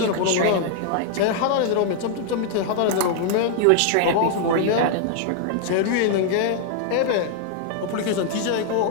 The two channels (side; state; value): both; different; correlation 0.00